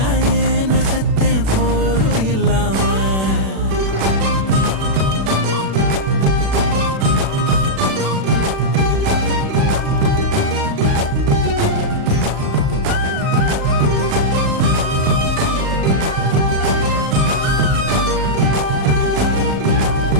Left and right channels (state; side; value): late; left; 36 ms